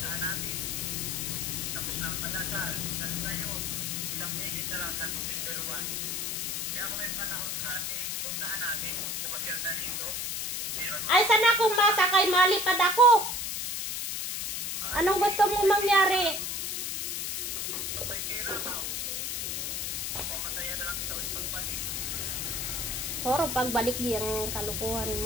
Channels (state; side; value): noise; left; hiss, 2 dB below the sound